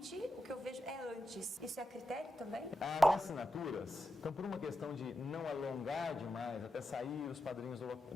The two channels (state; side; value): normal; both; correlation 0.89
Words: o que eu vejo é antes. Isso é critério também? As assinaturas, então por uma questão de não alongar demais, até sair os padrinhos